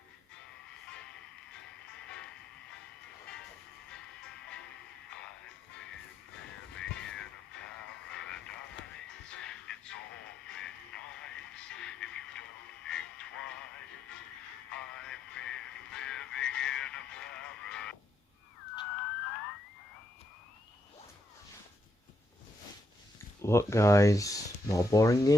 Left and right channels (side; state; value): both; normal; correlation 0.79